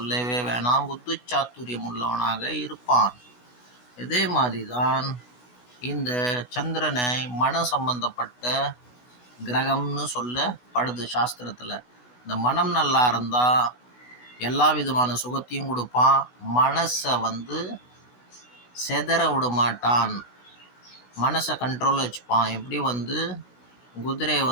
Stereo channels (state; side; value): late; right; 16 ms